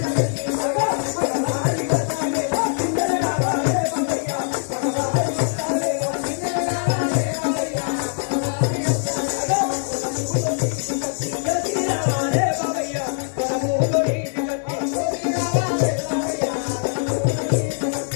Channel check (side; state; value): right; silent; digital silence